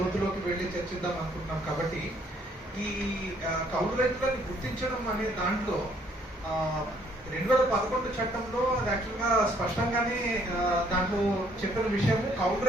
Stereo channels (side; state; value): both; normal; correlation 0.65